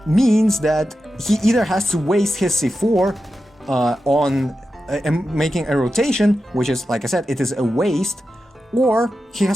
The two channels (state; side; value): normal; both; correlation 0.91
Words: means that he either has to waste his C4 on making a rotation, which is, like I said, it is a waste, or he